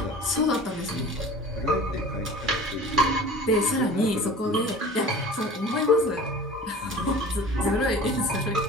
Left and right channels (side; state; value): both; normal; correlation 0.41